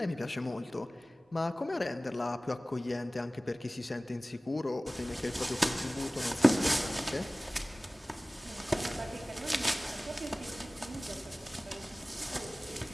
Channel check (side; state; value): both; normal; correlation 0.98